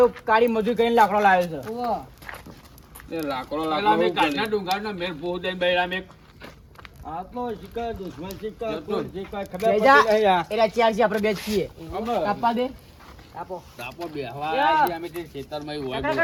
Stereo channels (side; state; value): both; identical; correlation 1.00